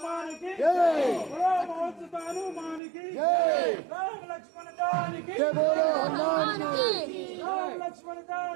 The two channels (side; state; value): left; drops out; at 2.8 s